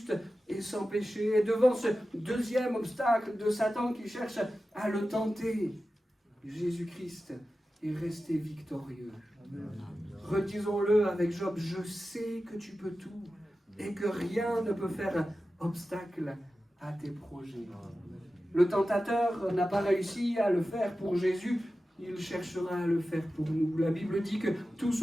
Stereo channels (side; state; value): both; normal; correlation 0.94